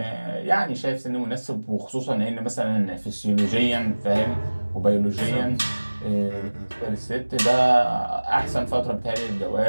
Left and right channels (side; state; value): both; inverted; correlation -1.00